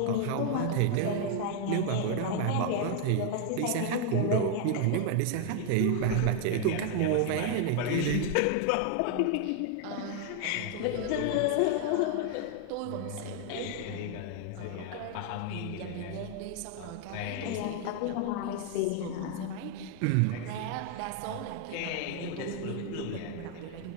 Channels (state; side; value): different; both; correlation 0.00